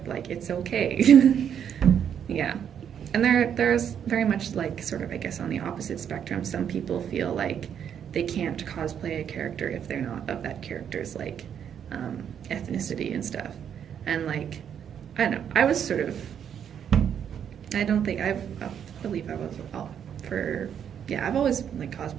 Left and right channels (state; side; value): quieter; left; 8.6 dB